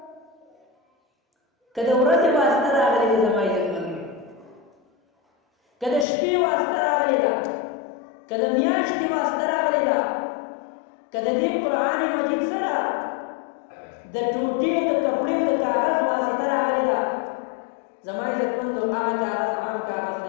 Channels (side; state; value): right; drops out; at 6.1 s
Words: که د ورځې واسطه راغلې ده زما عزتمندو، که د شپې واسطه راغلې ده، که د میاشتې واسطه راغلې ده، که د دې قرآن مجید سره د ټوټې او د کپړې او د کاغذ واسطه راغلې ده، زما عزتمندو هغه کاغذ عام کاغذ